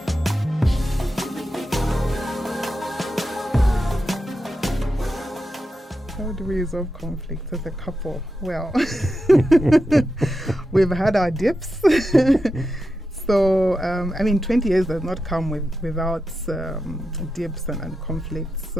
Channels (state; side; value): normal; both; correlation 0.89